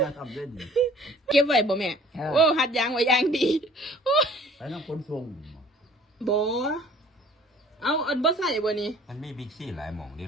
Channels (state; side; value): normal; both; correlation 0.52